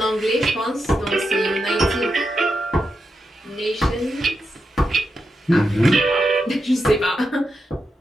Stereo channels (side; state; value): both; normal; correlation 0.86